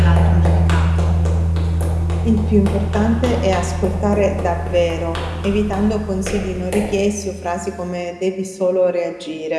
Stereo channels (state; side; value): identical; both; correlation 1.00